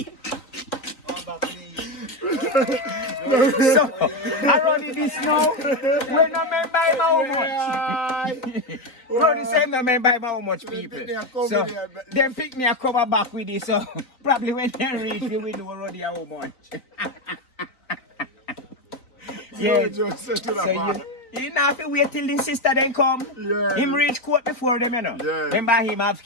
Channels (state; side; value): late; right; 3.9 ms